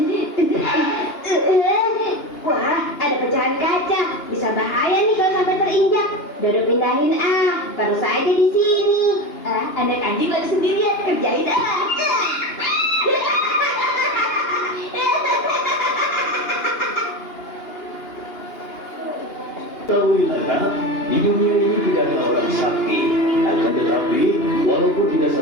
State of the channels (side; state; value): right; late; 2.9 ms